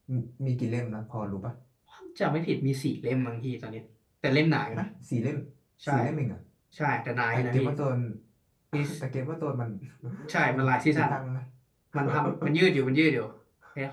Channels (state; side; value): identical; both; correlation 1.00